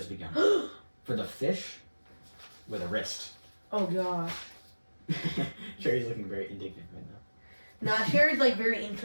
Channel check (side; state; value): both; inverted; correlation -1.00